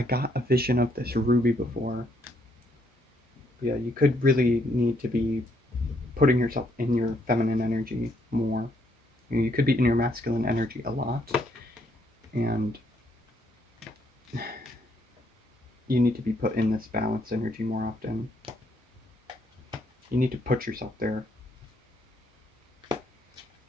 got a vision of this ruby before. Yeah, you could really need to be putting yourself in your feminine energy more. You could be in your masculine energy a lot, and you need to be put in this balanced energy more often. You need to put yourself there.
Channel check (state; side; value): normal; both; correlation 0.72